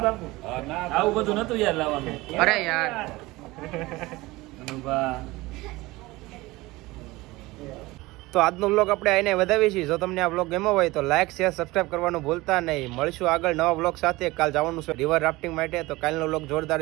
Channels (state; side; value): quieter; left; 20.5 dB